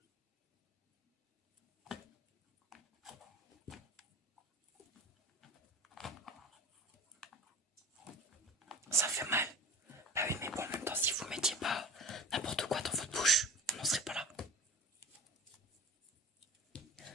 Ça fait mal. Bah oui, mais bon, en même temps, si vous mettiez pas n'importe quoi dans votre bouche, on n'en serait pas là.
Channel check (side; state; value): both; normal; correlation 0.37